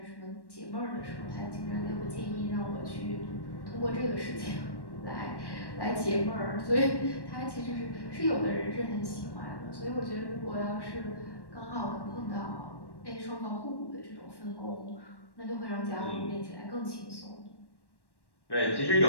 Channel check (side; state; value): right; late; 1.1 ms